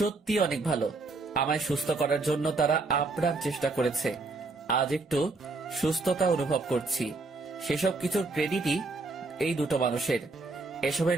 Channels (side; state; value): left; quieter; 3.5 dB